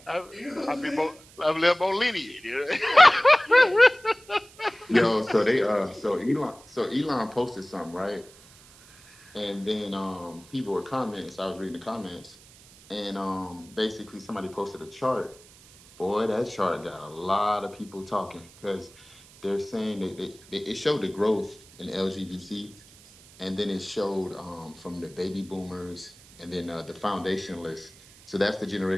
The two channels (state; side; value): noise; right; hiss, 24 dB below the sound